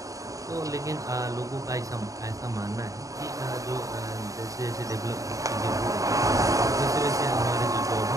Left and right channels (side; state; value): left; late; 0.16 ms